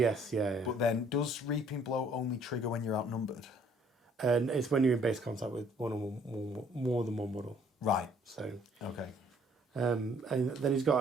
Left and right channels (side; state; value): both; normal; correlation 0.61